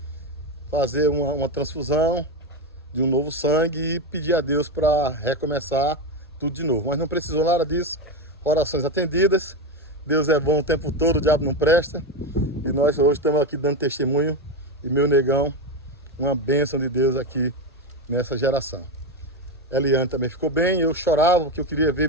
fazer uma transfusão de um novo sangue e pedir a Deus para recomeçar tudo de novo. Mas não precisou nada disso, orações atendidas, Deus é bom o tempo todo, o diabo não presta. E nós hoje estamos aqui dando testemunho, e meu negão, uma bênção de Deus aqui nessa geração. Eliane também ficou bem, eu chorava porque eu queria ver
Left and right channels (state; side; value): normal; both; correlation 0.13